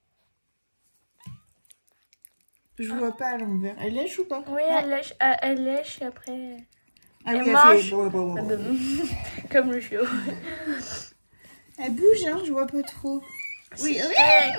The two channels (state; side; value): inverted; both; correlation -1.00